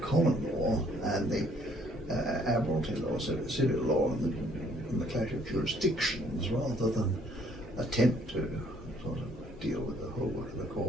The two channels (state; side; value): noise; left; hum, 21 dB below the sound